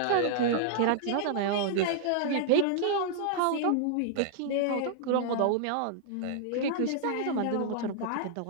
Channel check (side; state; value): both; different; correlation -0.01